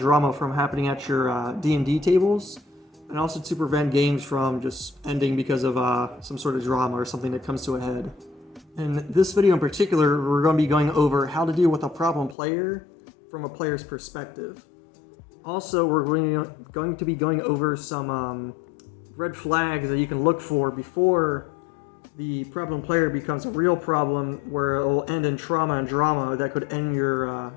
from happening at your D&D tables, and also to prevent games from just ending because of some sort of drama or something that comes to a head. In this video in particular, we're going to be going over how to deal with a problem player from a player's perspective. Also, we're going to be going over some red flags that you can look for before the problem player becomes a real problem, where it will end in trauma and drama that could end your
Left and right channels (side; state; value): right; drops out; at 12.4 s